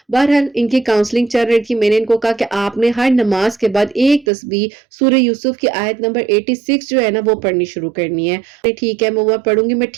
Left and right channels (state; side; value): drops out; left; at 4.2 s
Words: بہرحال ان کی کاؤنسلنگ چل رہی تھی، میں نے ان کو کہا کہ آپ نے ہر نماز کے بعد ایک تسبیح سورہ یوسف کی آیت نمبر 86 جو ہے نا وہ پڑھنی شروع کرنی ہے۔ ٹھیک ہے میں وہ پڑھوں گی، میں